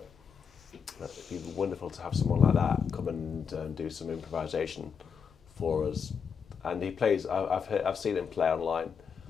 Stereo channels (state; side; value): quieter; right; 6.5 dB